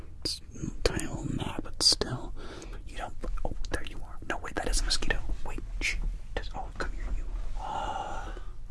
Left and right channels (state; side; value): identical; both; correlation 1.00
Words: It's a tiny little gnat, but still, you don't. Oh, there you are. No, wait, that is a mosquito. Wait, shh. Oh, come here, you.